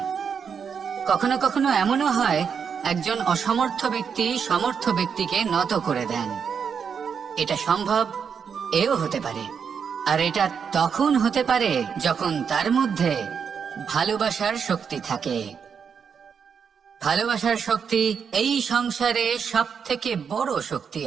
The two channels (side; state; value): left; quieter; 6.7 dB